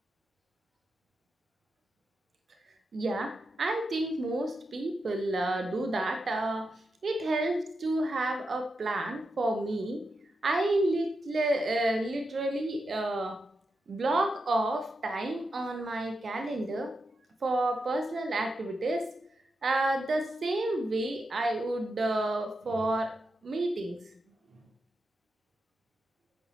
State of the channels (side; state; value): both; normal; correlation 0.87